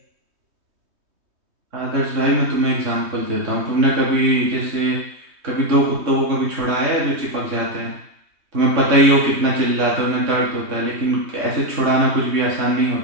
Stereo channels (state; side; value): late; left; 3.2 ms